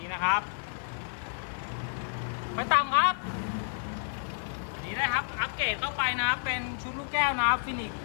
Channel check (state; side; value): silent; right; digital silence